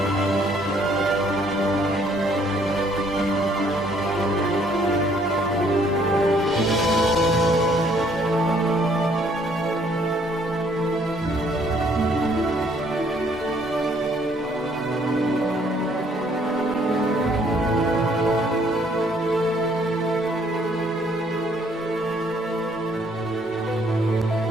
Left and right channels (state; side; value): normal; both; correlation 0.64